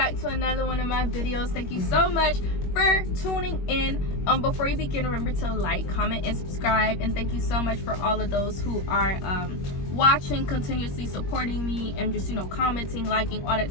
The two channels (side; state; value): right; late; 21 ms